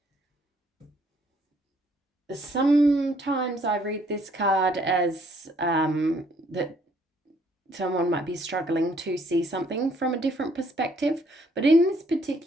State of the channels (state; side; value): normal; both; correlation 0.65